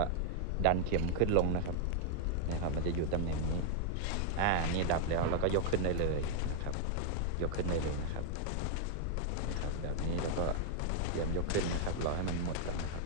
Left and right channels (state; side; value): different; both; correlation -0.01